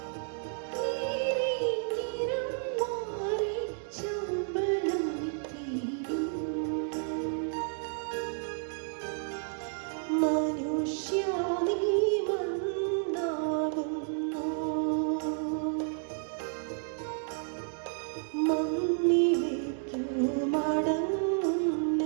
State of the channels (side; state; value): left; silent; 57 dB below the other